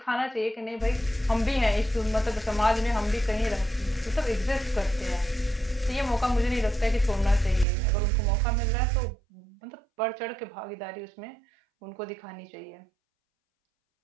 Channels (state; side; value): drops out; left; at 7.7 s